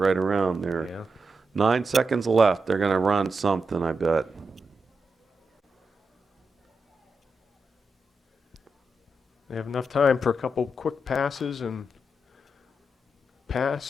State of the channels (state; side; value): normal; both; correlation 0.86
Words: around there. Yeah. 9 seconds left. They're going to run something, I bet. They have enough time for a couple quick passes and